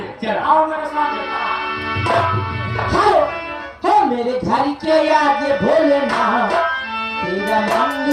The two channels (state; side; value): identical; both; correlation 1.00